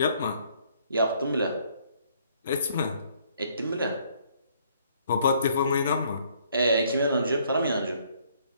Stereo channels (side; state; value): both; inverted; correlation -0.65